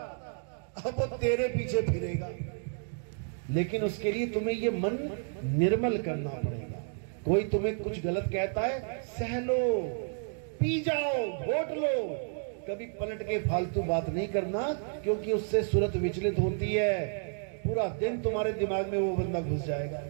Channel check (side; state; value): left; silent; 57 dB below the other